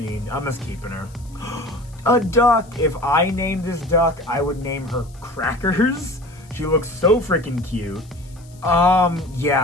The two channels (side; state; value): left; noise; hiss, 27 dB below the sound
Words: I'm just keeping her. A duck. If I named this duck, I would name her Crackers. She looks so freaking cute.